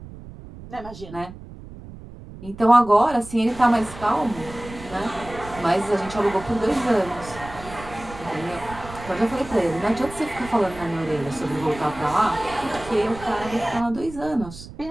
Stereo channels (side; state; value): right; noise; rumble, 15 dB below the sound